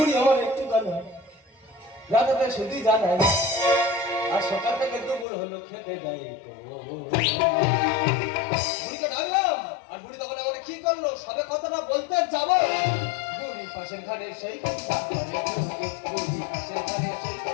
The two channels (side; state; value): right; drops out; at 5.2 s